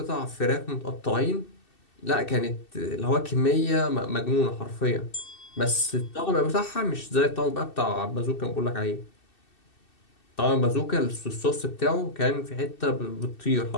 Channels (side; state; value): right; late; 2.7 ms